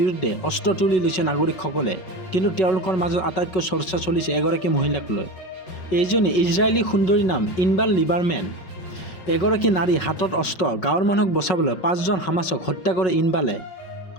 অস্ত্ৰ তুলি লৈছে নাগৰিকসকলে, কিন্তু তেওঁলোকৰ মাজত আটাইতকৈ চৰ্চা চলিছে এগৰাকী মহিলাক লৈ। এইজনী ইজৰাইলী সুন্দৰীৰ নাম ইনবাৰ লিবাৰমেন। এগৰাকী নাৰী হাতত অস্ত্ৰ, গাঁৱৰ মানুহক বচাবলৈ 5জন হামাছক হত্যা কৰে ইনবালে।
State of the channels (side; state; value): right; late; 5.4 ms